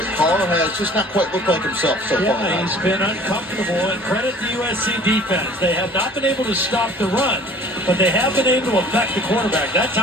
Carr has just not quite looked like himself so far. Yeah, he's been uncomfortable, and credit the USC defense. They have not been able to stop the run, but they have been able to affect the quarterback. That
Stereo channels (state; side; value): normal; both; correlation 0.50